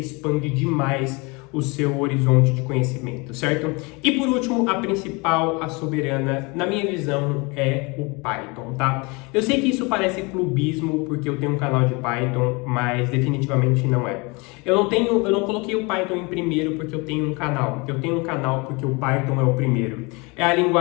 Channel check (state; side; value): quieter; right; 27.8 dB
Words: demais o seu horizonte de conhecimento, certo? E por último, a principal, a soberana, na minha visão, é o Python, tá? Eu sei que isso parece clubismo, porque eu tenho um canal de Python, mas definitivamente não é. Eu não coloquei o Python em primeiro porque eu tenho um canal. Eu tenho um canal porque o Python é o primeiro. É a